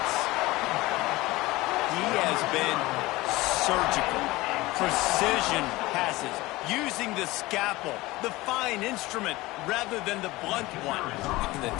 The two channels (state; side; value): quieter; right; 19.9 dB